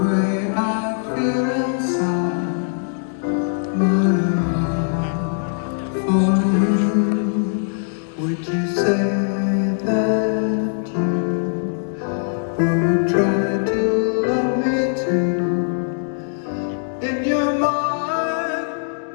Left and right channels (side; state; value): right; silent; digital silence